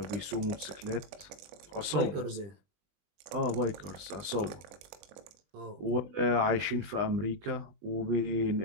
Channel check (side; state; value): left; late; 20 ms